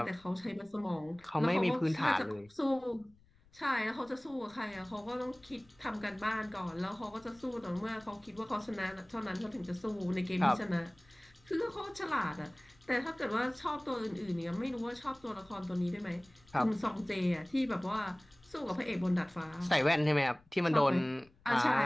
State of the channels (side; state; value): left; noise; rumble, 29 dB below the sound